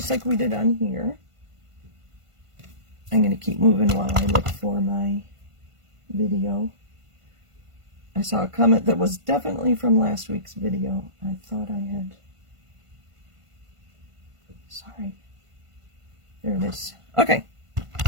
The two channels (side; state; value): left; late; 1.5 ms